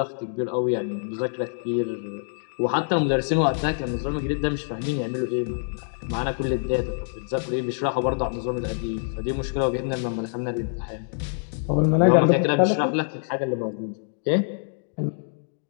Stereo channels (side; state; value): right; silent; digital silence